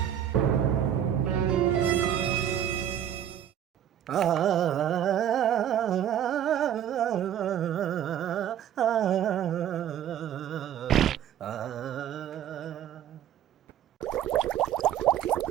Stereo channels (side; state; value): left; quieter; 10.2 dB